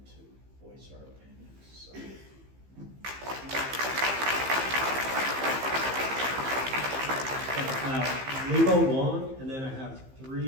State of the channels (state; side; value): late; left; 15 ms